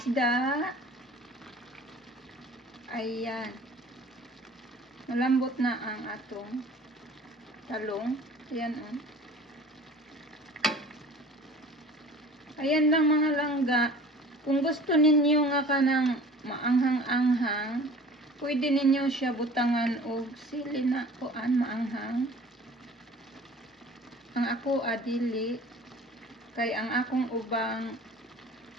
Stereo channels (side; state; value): both; normal; correlation 0.45